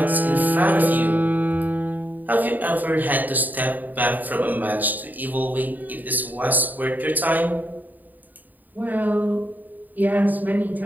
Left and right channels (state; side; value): late; left; 0.085 ms